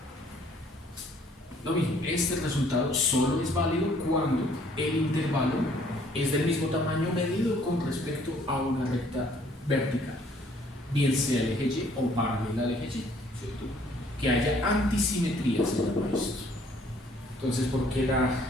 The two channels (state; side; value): normal; both; correlation 0.61